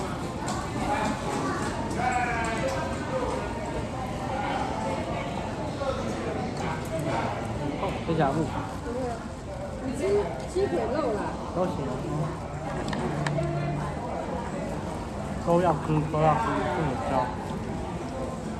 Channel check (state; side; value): identical; both; correlation 1.00